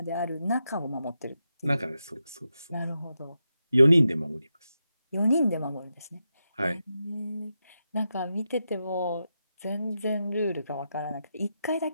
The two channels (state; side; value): inverted; both; correlation -0.87